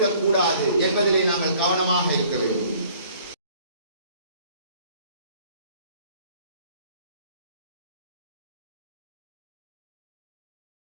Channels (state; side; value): inverted; both; correlation -0.56